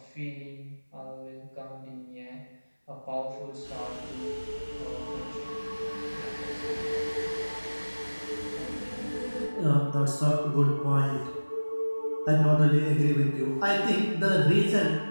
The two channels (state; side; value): inverted; both; correlation -1.00